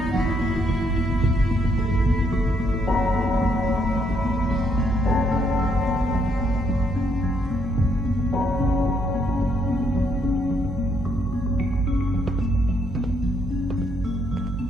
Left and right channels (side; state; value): both; normal; correlation 0.73